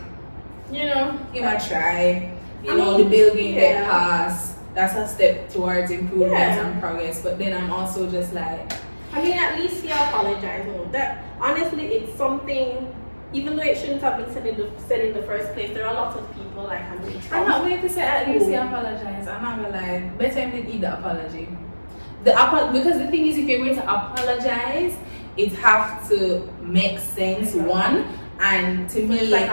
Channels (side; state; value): both; inverted; correlation -1.00